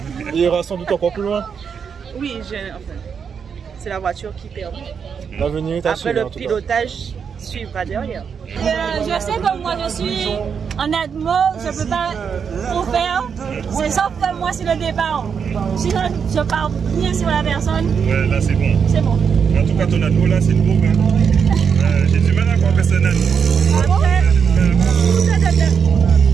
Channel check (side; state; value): left; quieter; 6.7 dB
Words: Il ira sans doute encore plus loin. Oui, enfin, c'est la voiture qui perd. L'avenir est Après, assuré. le pilotage suivra derrière. Je sais que moi je suis en Admo, je ne peux pas trop faire. C'est sauf que moi c'est le départ. Si je pars bien sur la personne, Ouais, là, c'est bon. c'est bon. En tout cas, ton ado, là, c'est nouveau. Hein. J'ai du mal à croire que c'est un ado.